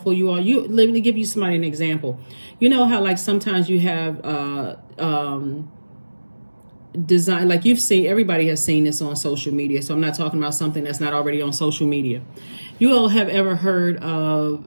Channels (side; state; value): both; inverted; correlation -1.00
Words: you are, let me give you an example. You know how like sometimes you have design, like everybody has seen this on social media. So I'm not talking about something that's not already on social media. You all have ever heard of